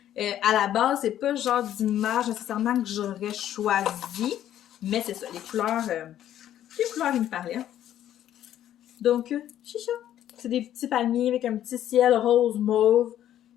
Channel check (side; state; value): right; quieter; 11.5 dB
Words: À la base, c'est pas le genre d'image nécessairement que j'aurais choisi. Mais c'est ça, les couleurs, ils me parlaient. Donc, chicha. C'est des petits palmiers avec un petit ciel rose mauve.